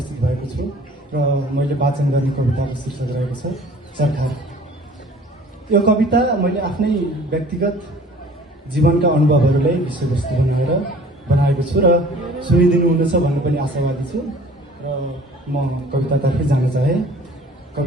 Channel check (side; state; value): both; normal; correlation 0.50